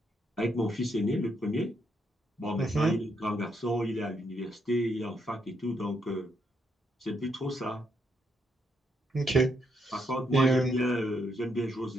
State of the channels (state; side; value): normal; both; correlation 0.77